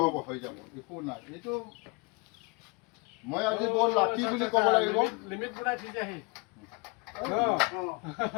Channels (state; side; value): quieter; right; 29.1 dB